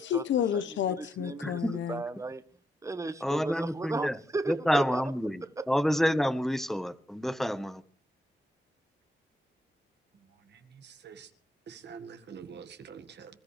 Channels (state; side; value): normal; both; correlation 0.80